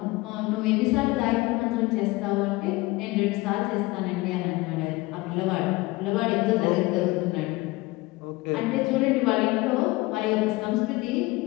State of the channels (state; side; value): quieter; right; 21.7 dB